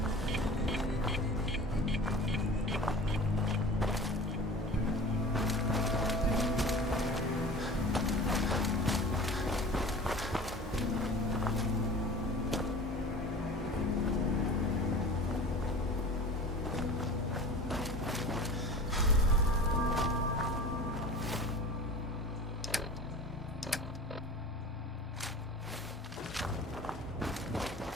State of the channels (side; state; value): both; normal; correlation 0.39